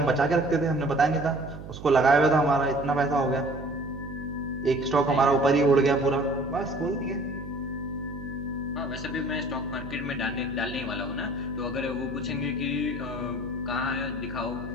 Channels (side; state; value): right; noise; hum, 12 dB below the sound